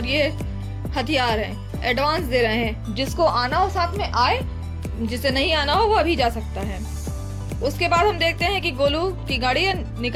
ये हथियार है, एडवांस दे रहे हैं, जिसको आना हो साथ में आए, जिसे नहीं आना हो वो अभी जा सकता है। उसके बाद हम देखते हैं कि गोलू की गाड़ी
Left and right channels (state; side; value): identical; both; correlation 1.00